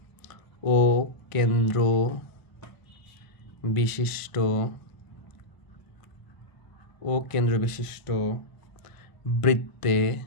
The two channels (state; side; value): late; right; 1.0 ms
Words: ও কেন্দ্র বিশিষ্ট বৃত্তে,